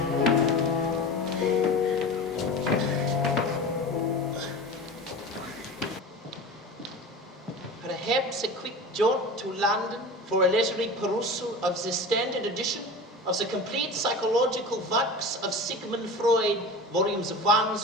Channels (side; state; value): both; normal; correlation 0.32